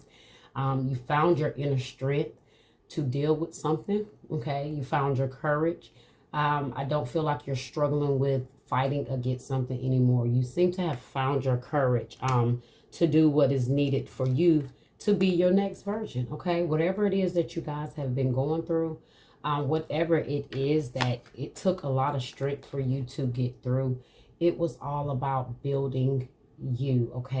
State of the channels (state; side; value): identical; both; correlation 1.00